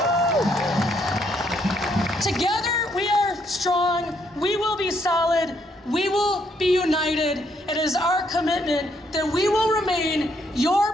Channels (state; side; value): normal; both; correlation 0.72